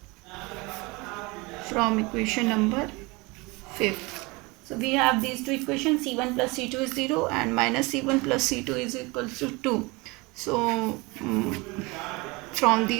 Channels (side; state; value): left; quieter; 25.3 dB